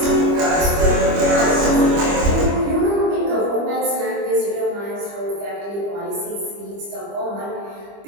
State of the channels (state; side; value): late; left; 25 ms